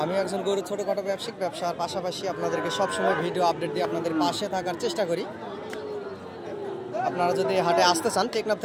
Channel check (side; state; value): both; identical; correlation 1.00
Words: আমি একজন গরু ছোটোখাটো ব্যবসার পাশাপাশি আপনাদেরকে সবসময় ভিডিও আপডেট দিয়ে আপনাদের পাশে থাকার চেষ্টা করি। আপনারা যদি হাটে আসতে চান, টেকনাফ